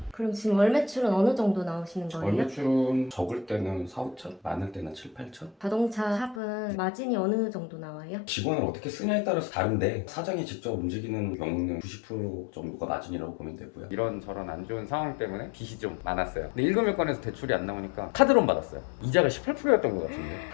그럼 지금 월 매출은 어느 정도 나오시는 월 거예요? 매출은 적을 때는 4, 5천, 많을 때는 7, 8천. 자동차 샵은 마진이 어느 정도 나와요? 직원을 어떻게 쓰냐에 따라서 다른데 사장이 직접 움직이는 경우는 90% 정도가 마진이라고 보면 되고요. 이런저런 안 좋은 상황 때문에 빚이 좀 많았어요. 근데 일금일권에서 대출이 안 나오니까 카드론 받았어요. 이자가 18%였던 것 같은데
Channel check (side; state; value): right; drops out; at 6.4 s